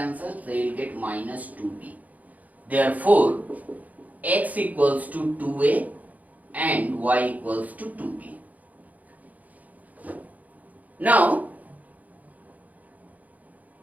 so you will get minus 2b. Therefore x equals to 2a and y equals to 2b. Now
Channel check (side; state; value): left; late; 0.077 ms